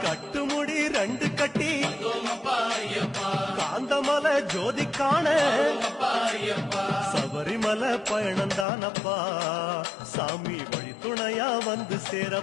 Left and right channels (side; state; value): right; drops out; at 8.7 s